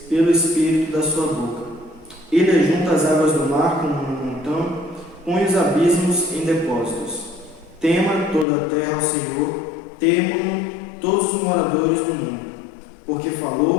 pelo espírito da sua boca. Ele ajunta as águas do mar como um montão, põe os abismos em depósitos. Tema toda a terra ao Senhor, temam-no todos os moradores do mundo, porque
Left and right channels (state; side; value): drops out; right; at 8.5 s